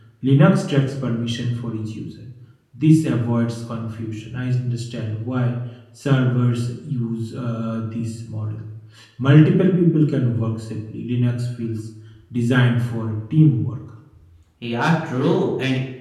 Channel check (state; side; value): identical; both; correlation 1.00